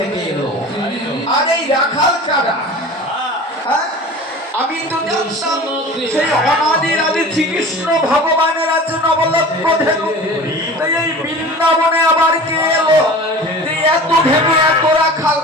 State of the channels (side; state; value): both; normal; correlation 0.38